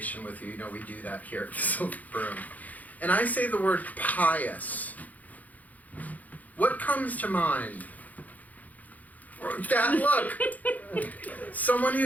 with you, you know we do that here at the Silver Broom, and I say the word pious, what comes to mind? That look! Someone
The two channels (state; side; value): late; right; 0.078 ms